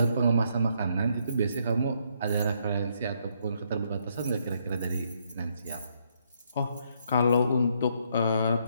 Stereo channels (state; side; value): inverted; both; correlation -0.72